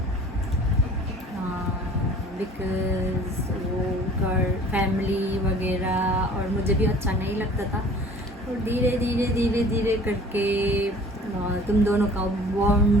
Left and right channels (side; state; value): both; normal; correlation 0.48